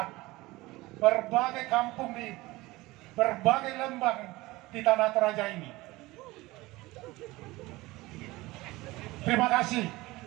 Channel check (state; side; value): quieter; left; 20.3 dB